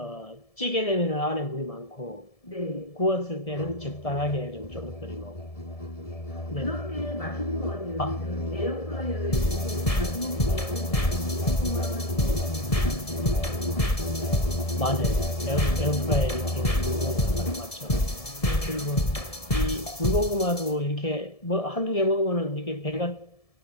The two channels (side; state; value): right; late; 1.7 ms